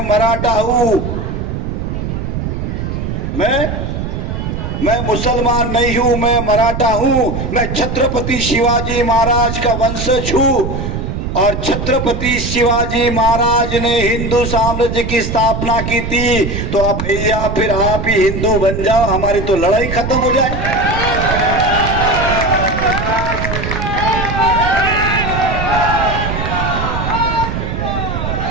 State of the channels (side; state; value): right; noise; rumble, 4 dB below the sound